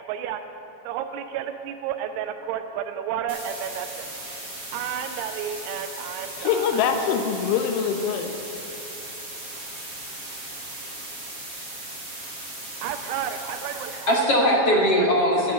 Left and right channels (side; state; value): right; late; 7.3 ms